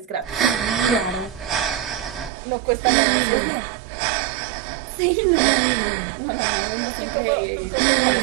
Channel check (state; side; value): drops out; left; at 2.3 s